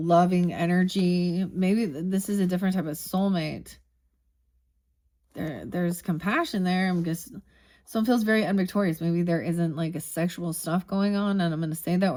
energy. Maybe this is a different type of soulmate. There's compassion there. I'm just... Someone feels very unvictorious. Maybe there isn't like a sexual stuff going on, and I'm going to say that,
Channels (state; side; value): identical; both; correlation 1.00